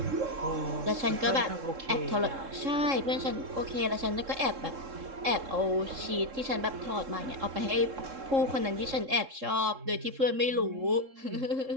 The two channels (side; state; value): left; late; 3.7 ms